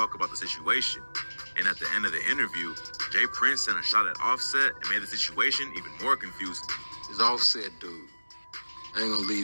about the situation. And at the end of the interview, Jay Prince sent a shot at Offset and made the situation even more confusing. This Offset dude, I ain't gonna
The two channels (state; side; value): inverted; both; correlation -1.00